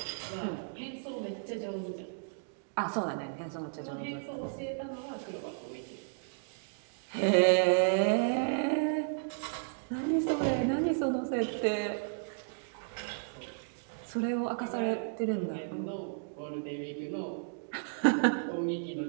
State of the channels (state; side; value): silent; left; digital silence